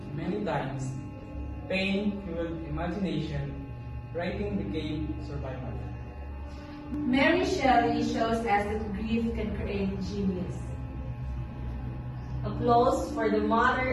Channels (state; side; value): identical; both; correlation 1.00